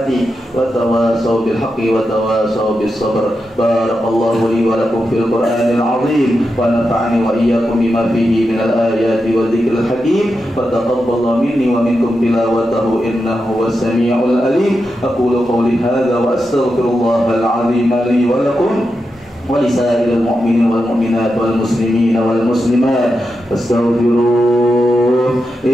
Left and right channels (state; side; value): normal; both; correlation 0.88